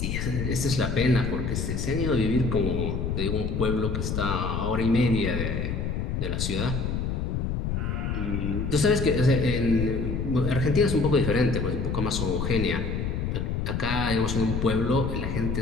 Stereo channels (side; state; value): left; noise; rumble, 1 dB below the sound